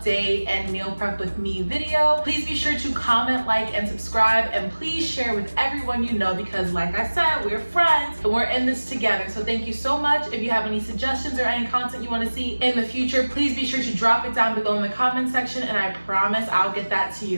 and meal prep with me video. Please be sure to comment, like, and subscribe, and please share with everyone you know because, like I said, we're friends and we're in this together. So thank you so much. If you have any suggestions or any content you want to see in the future, please be sure to drop it down below in the comment section, and I promise I'll get that to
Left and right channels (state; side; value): inverted; both; correlation -1.00